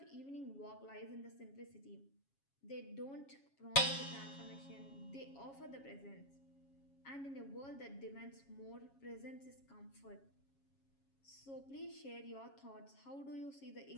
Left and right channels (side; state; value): right; late; 7.3 ms